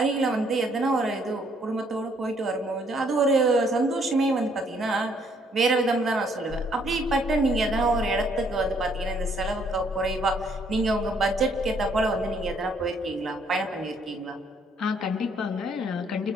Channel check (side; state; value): both; normal; correlation 0.67